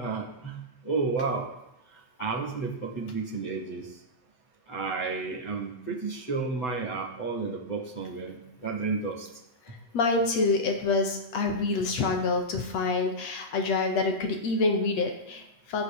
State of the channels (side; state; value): right; late; 8.3 ms